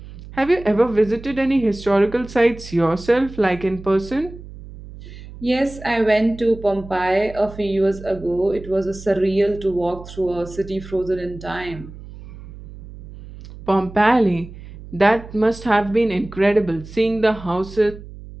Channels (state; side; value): noise; right; hum, 15 dB below the sound